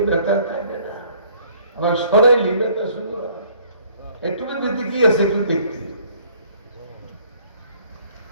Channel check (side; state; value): both; inverted; correlation -0.58